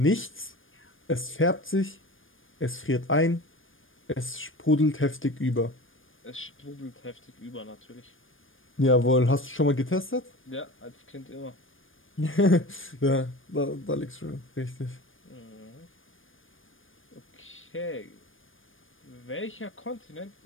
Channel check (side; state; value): right; late; 0.59 ms